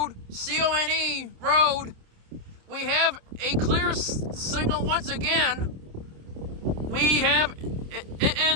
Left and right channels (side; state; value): left; late; 27 ms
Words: C-O-N-E Road. We have a clear signal once again. We have it